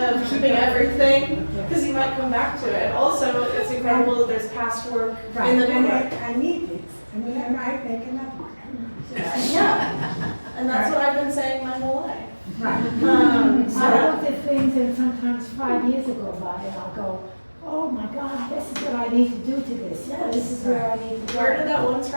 keeping everything, because you might come back to it. Also, it's incredible that there's past work in the and new work. I need these. I mean, I might make another one. Yeah, and that's what I've been saying my whole life. Right. I looked at things, and sometimes 5 years go by, and I'll go, oh my God, this is what I need to do to this. Yeah, this is where I need to go. Where did that one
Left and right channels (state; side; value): inverted; both; correlation -1.00